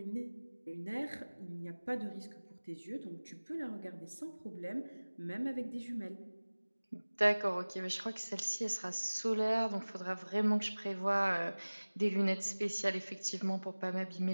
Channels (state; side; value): inverted; both; correlation -1.00